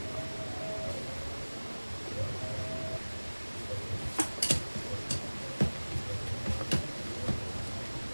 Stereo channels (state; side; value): inverted; both; correlation -1.00